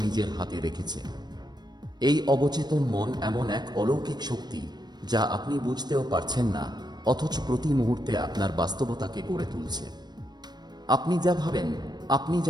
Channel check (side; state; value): left; late; 0.20 ms